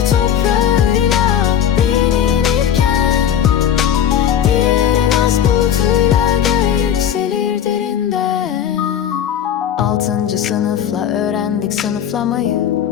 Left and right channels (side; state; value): right; quieter; 9.5 dB